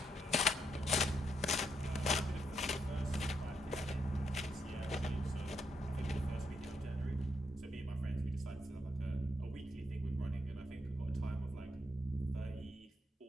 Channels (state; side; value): normal; both; correlation 0.79